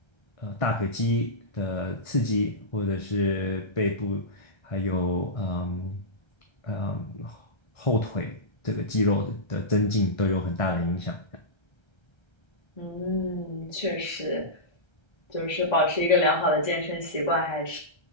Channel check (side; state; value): right; late; 1.3 ms